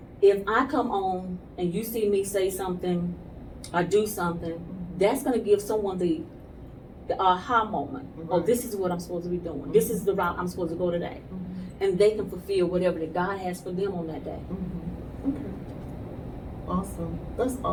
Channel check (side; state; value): both; identical; correlation 1.00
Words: If I come on and you see me say something or do something, that's going to give someone the aha moment. Oh, this is what I'm supposed to be doing. This is the route I'm supposed to go today. And they can fulfill whatever that God has for them on that day. Okay. Awesome. That's